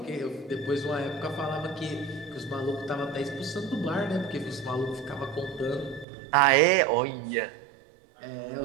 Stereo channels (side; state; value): left; drops out; at 6.1 s